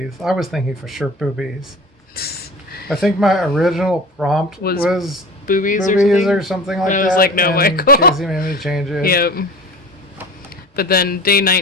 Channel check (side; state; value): both; normal; correlation 0.36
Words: I was thinking for sure boobies. I think my original prompt was boobies or something like that. I was like, no, Michael. Casey made me change it. Yep. But then day